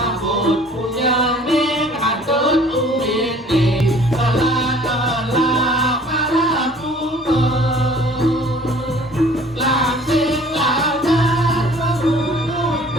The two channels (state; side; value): normal; both; correlation 0.52